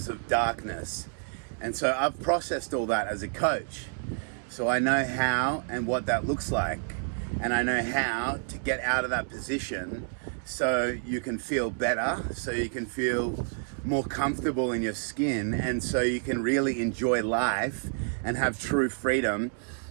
of darkness. And so I've processed all that as a coach. So I know how and what that looks like. And I know how to get out of that position so you can feel better, so you can feel more comfortable in your skin, and so you can really enjoy life and have true freedom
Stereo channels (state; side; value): silent; left; digital silence